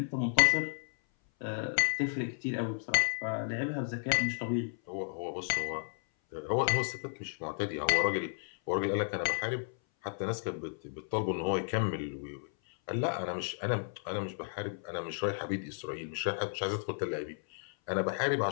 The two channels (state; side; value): silent; right; 56 dB below the other